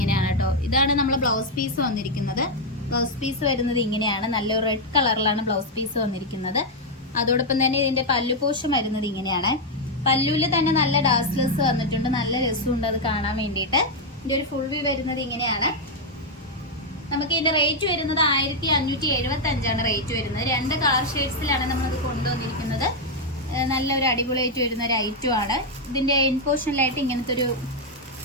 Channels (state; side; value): normal; both; correlation 0.00